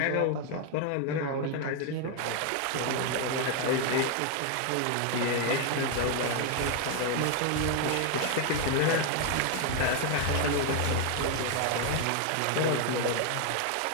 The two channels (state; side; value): different; both; correlation 0.00